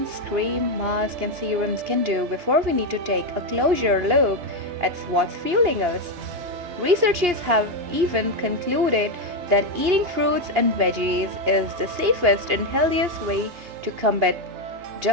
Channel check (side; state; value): left; late; 2.8 ms